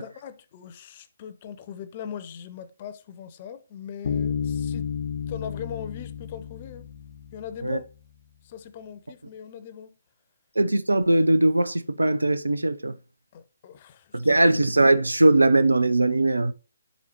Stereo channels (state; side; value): inverted; both; correlation -0.93